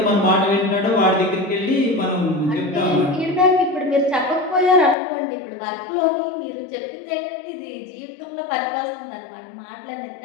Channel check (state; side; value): drops out; right; at 5.0 s